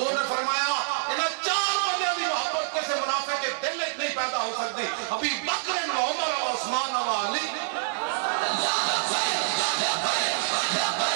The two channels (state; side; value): silent; left; digital silence